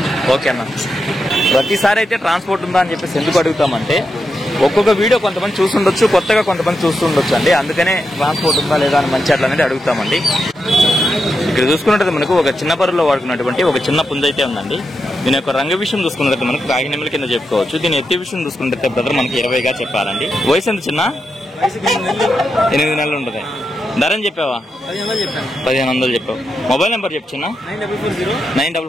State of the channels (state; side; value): normal; both; correlation 0.86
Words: ఓకే అన్న. ప్రతిసారి అయితే ట్రాన్స్పోర్ట్ ఉందా అని చెప్పేసి ఎందుకు అడుగుతామంటే ఒక్కొక్క వీడియో కొంతమంది చూస్తుండొచ్చు, కొత్తగా కొంతమంది చూస్తుండొచ్చు అండి. అందుకనే ట్రాన్స్పోర్ట్ ఉందా లేదా అని మంచి అట్లా అనేది అడుగుతామండి. ఇక్కడ చూసుకున్నట్టు మనకు ఒక చిన్న బరువులో వాడుకున్నటువంటి ఒక చిన్న పుంజ అయితే ఉందండి. దీని యొక్క రంగు విషయం చూసుకున్నట్టు మనకు కాకినెమ్మల కింద చెప్పుకోవచ్చు. దీని ఎత్తి విషయం చూసుకున్నట్టు బ్రదర్ మనకి 20గా చెప్పారండి. వయసు ఎంత చిన్న? 8 నెలలు ఉంటుంది. ధర అని చెప్పావా? 1,500 చెప్పావు. మొబైల్ నెంబర్ చెప్పు చిన్న.